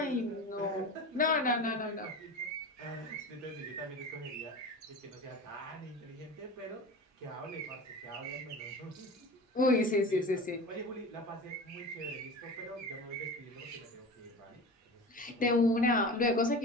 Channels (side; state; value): both; normal; correlation 0.32